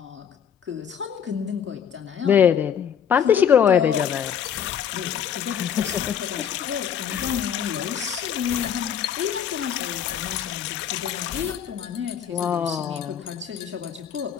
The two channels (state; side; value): quieter; right; 8.3 dB